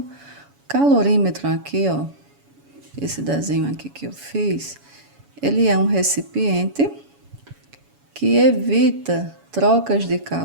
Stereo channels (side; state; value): left; late; 7.1 ms